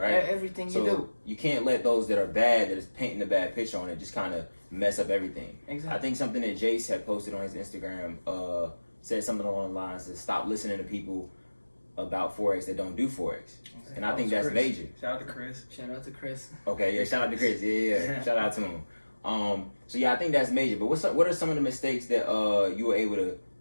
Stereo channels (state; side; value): inverted; both; correlation -1.00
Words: Everything So you do. you can't let those that are bad, that is painting a bad picture on it, just kind of mess up everything. Exactly. I think something that Jace had posted on his Instagram said something along the lines of stop listening to people about Forex that don't do Forex. And I think that's Chris. major. Shout out to Chris. Shout out to Chris. Okay, yeah, shout out to Chris. Yeah. Shout out to him. So yeah, I think that's major. But what are some of the mistakes that you were able to